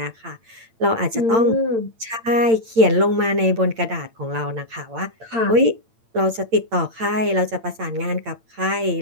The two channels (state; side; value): late; left; 8.8 ms